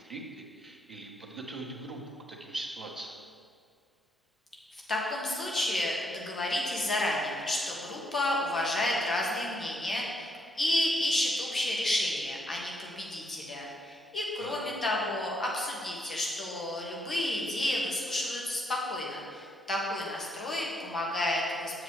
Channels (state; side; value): normal; both; correlation 0.75